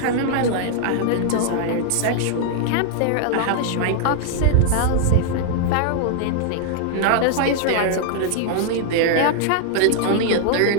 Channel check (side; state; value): both; different; correlation -0.01